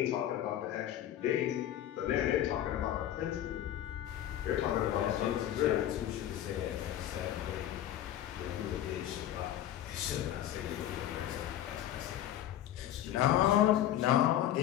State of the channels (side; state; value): right; quieter; 12.0 dB